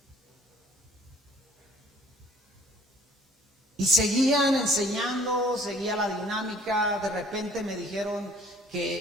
Y seguían enseñando, seguía la dinámica. De repente me dijeron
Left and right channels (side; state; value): both; normal; correlation 0.55